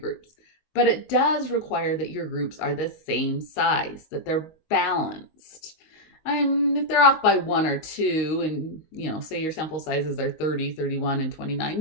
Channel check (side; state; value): right; late; 19 ms